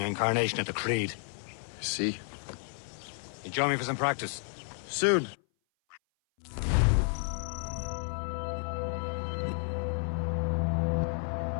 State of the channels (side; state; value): right; silent; 57 dB below the other